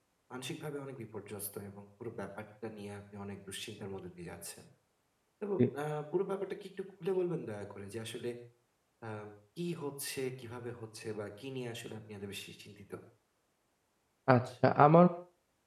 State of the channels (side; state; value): both; identical; correlation 1.00